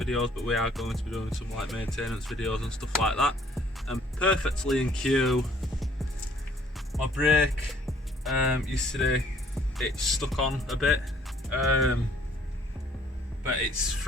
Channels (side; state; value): both; normal; correlation 0.60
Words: but we are going to be doing some like maintenance videos and stuff like that. And perfectly in cue, my brake yesterday it stuck on a bit, but it's